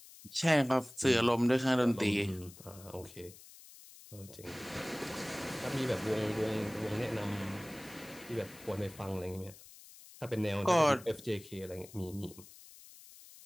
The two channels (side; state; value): left; noise; hiss, 19 dB below the sound